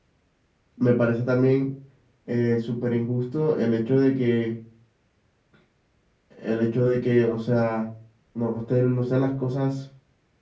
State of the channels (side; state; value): both; identical; correlation 1.00